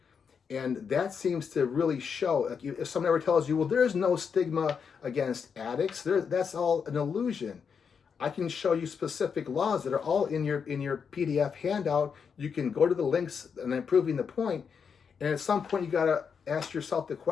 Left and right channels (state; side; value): quieter; right; 6.4 dB